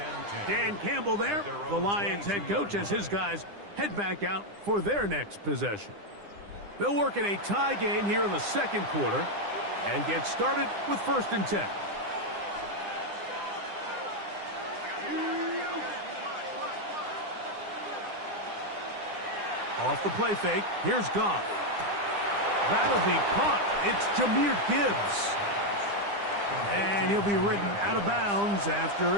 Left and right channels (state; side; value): late; left; 9.9 ms